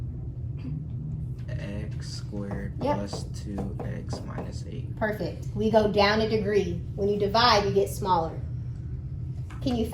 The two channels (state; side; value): identical; both; correlation 1.00